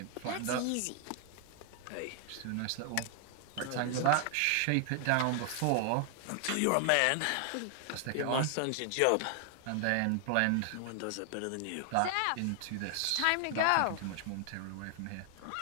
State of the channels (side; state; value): both; different; correlation 0.00